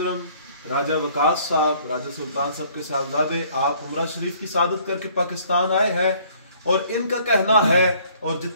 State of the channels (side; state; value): both; inverted; correlation -0.59